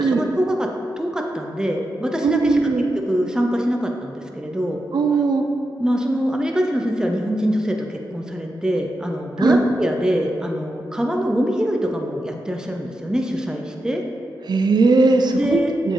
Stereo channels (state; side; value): normal; both; correlation 0.88